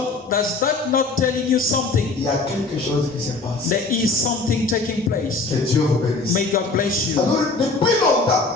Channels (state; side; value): quieter; right; 3.7 dB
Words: Does that not telling you something? Il y a quelque chose qui se passe. There is something taking place. Que Dieu vous bénisse. May God bless you. Alors, depuis longtemps,